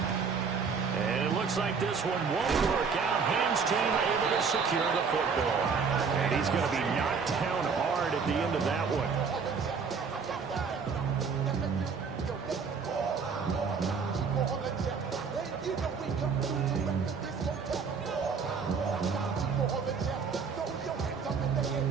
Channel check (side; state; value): left; quieter; 5.6 dB